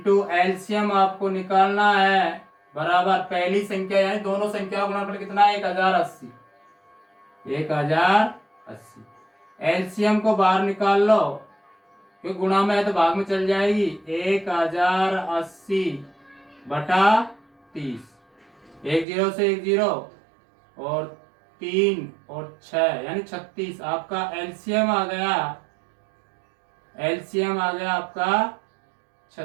एलसीएम आपको निकालना है बराबर पहली संख्या यानी दोनों संख्या का गुणनफल कितना है 1080। 1080 एलसीएम को बाहर निकाल लो क्योंकि गुणा में है तो भाग में चल जाएगी। 1080 बटा 30, 10 से 10 और 3 और 6 यानी 36। आपका एलसीएम आ गया, एलसीएम आ गया आपका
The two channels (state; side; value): drops out; left; at 19.1 s